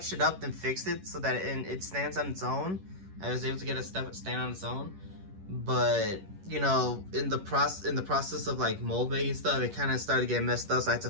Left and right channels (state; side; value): late; left; 11 ms